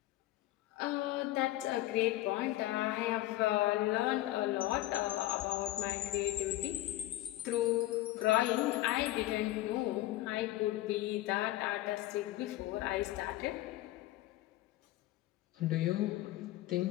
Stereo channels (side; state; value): right; quieter; 16.0 dB